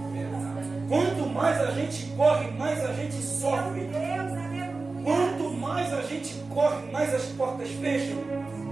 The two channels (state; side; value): quieter; left; 3.8 dB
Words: Quanto mais a gente corre, mais a gente sofre. Quanto mais a gente corre, mais as portas fecham.